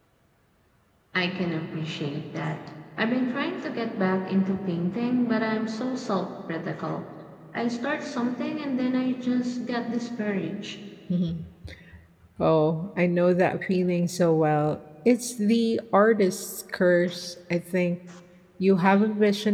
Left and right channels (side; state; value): both; identical; correlation 1.00